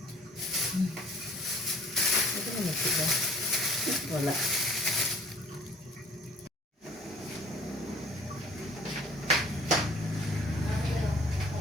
Ito na magsiga. Wala.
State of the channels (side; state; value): both; normal; correlation 0.55